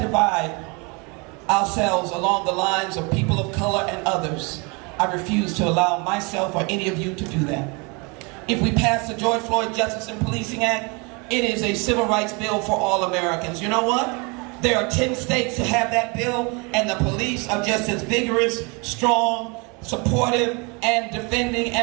ourselves along the lines of people of color and others. I refuse to allow myself or any of you to do that. If we pass the George Floyd Justice and Policing Act, it is a civil rights bill for all Americans. You know what? There are 10 states that have that bill, and the police are just as vigorous, strong, supportive, and defending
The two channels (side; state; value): left; quieter; 30.2 dB